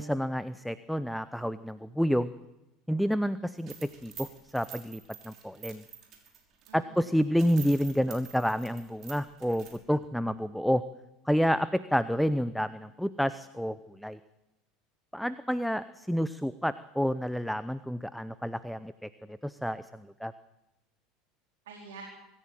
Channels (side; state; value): both; normal; correlation 0.97